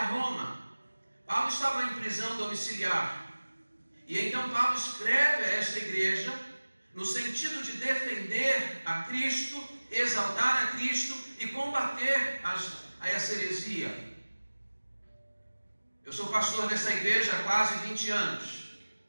Roma. Paulo estava em prisão domiciliar. E então Paulo escreve a esta igreja no sentido de defender a Cristo, exaltar a Cristo e combater a essa heresia. Eu sou pastor dessa igreja há quase 20 anos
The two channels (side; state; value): both; inverted; correlation -1.00